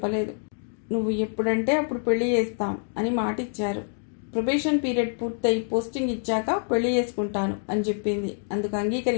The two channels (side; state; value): right; silent; digital silence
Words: నువ్వు ఎప్పుడంటే అప్పుడు పెళ్లి చేస్తాం అని మాటిచ్చారు. ప్రొబేషన్ పీరియడ్ పూర్తయి పోస్టింగ్ ఇచ్చాక పెళ్లి చేసుకుంటాను అని చెప్పింది. అందుకు